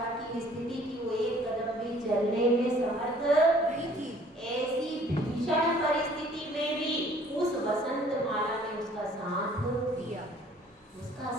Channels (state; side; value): normal; both; correlation 0.56